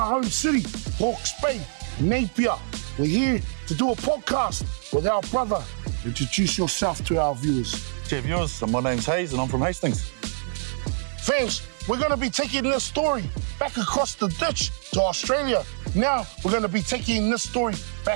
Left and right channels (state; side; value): silent; left; digital silence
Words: home city, Hawke's Bay, Napier. We're here to do a podcast with our brother. Introduce yourself to our viewers. Dear viewers, my name's Hayes and I'm from Hastings. Fams, we're going to be taking this story back across the ditch to Australia. Now, we're going to be taking this story